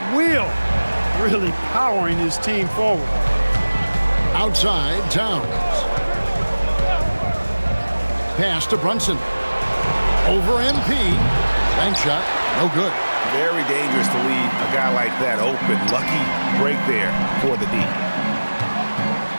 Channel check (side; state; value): both; inverted; correlation -1.00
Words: will, really powering his team forward. Outside, Towns. Pass to Brunson. Over MP. Bank shot, no good. Very dangerous to leave a guy like that open. Lucky break there for the D.